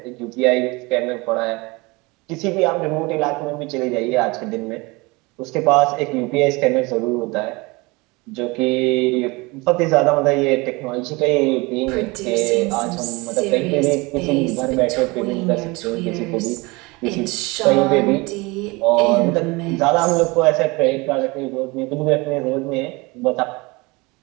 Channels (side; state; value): left; quieter; 24.9 dB